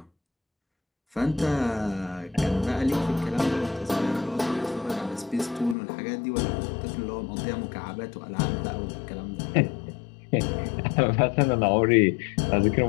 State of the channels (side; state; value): right; drops out; at 5.8 s